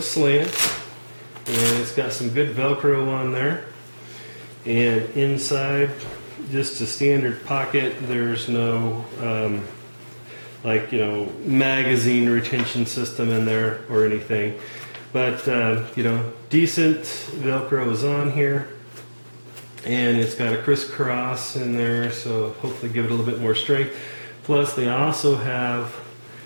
slant, and it's got some good Velcro on there. And inside, just a standard pocket. There's no like, you know, magazine retention system in there or anything. But you know, decent Velcro is on here, and it's got a crisscross in there, so hopefully give it a little bit more strength. Plus they also have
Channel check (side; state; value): both; inverted; correlation -1.00